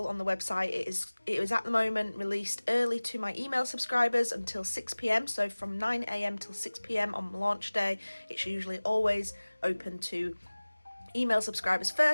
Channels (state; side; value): inverted; both; correlation -1.00